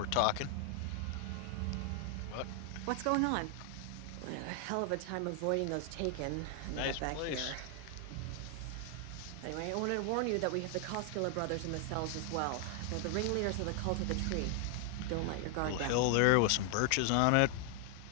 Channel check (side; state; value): both; different; correlation 0.00